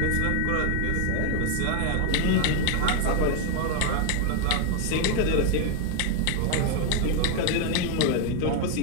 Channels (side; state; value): both; different; correlation 0.00